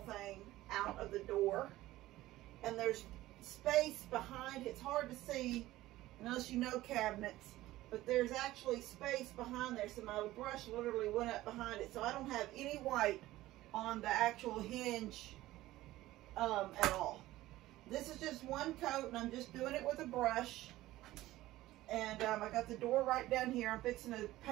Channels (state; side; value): quieter; left; 16.4 dB